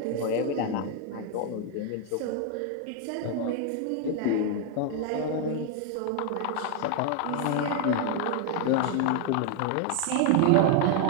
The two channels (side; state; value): both; different; correlation 0.00